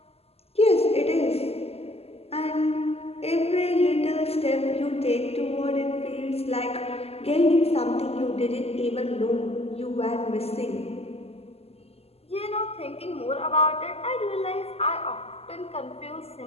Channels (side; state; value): right; late; 0.29 ms